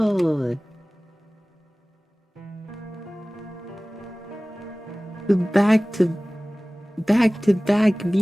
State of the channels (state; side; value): normal; both; correlation 0.98